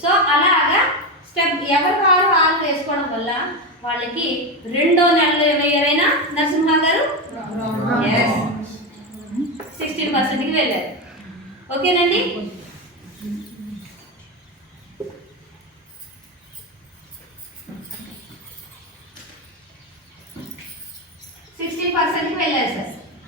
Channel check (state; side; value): normal; both; correlation 0.15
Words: సో అలాగా స్టెప్ ఎవరు 6 వేసుకోవడం వల్ల వాళ్ళకి 2వ నెలలో ఏమయ్యారైనా నరసింహ గారు 16%కి వెళ్ళారు. ఓకేనండి? వెళ్ళారు సార్.